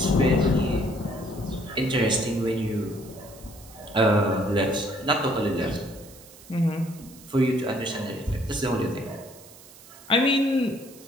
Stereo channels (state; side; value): noise; right; hiss, 21 dB below the sound